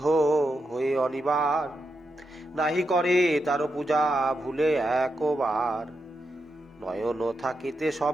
হয়ে অনিবার, নাহি করে তার পূজা ভুলে একবার। নয়ন থাকিতে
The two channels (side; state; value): both; normal; correlation 0.85